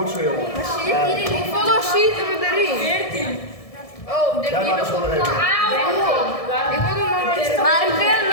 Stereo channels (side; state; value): right; late; 1.7 ms